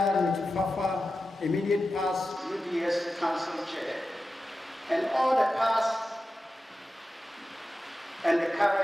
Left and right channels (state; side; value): normal; both; correlation 0.92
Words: immediate past UDS Council Chair, and all the past and the